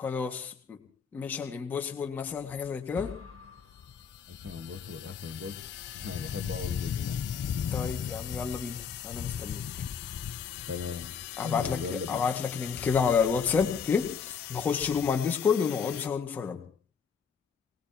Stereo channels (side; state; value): right; quieter; 6.3 dB